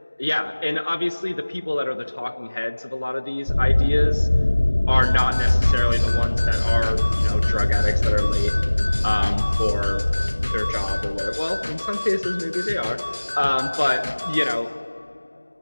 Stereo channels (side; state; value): both; inverted; correlation -1.00